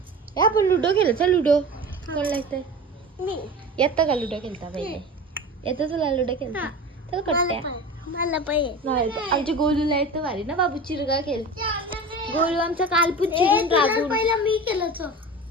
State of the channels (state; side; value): normal; both; correlation 0.33